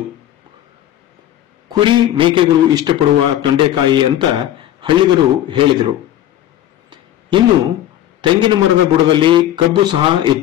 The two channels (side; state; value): right; quieter; 12.3 dB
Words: ಕುರಿ, ಮೇಕೆಗಳು ಇಷ್ಟಪಡುವ ತೊಂಡೆಕಾಯಿ ಅಂತ ಹಳ್ಳಿಗರು ಹೇಳಿದರು. ಇನ್ನು ತೆಂಗಿನ ಮರದ ಬುಡದಲ್ಲಿ ಕಬ್ಬು ಸಹ